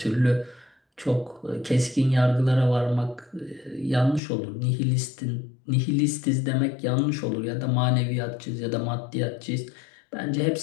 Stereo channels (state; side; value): drops out; right; at 4.2 s